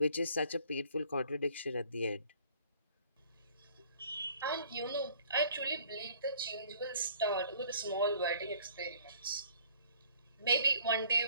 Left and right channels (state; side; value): inverted; both; correlation -0.56